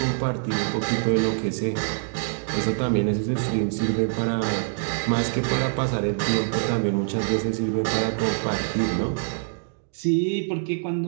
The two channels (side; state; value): left; silent; digital silence